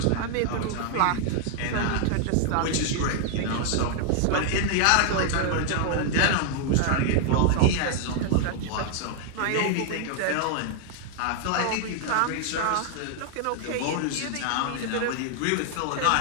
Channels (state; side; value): different; both; correlation 0.00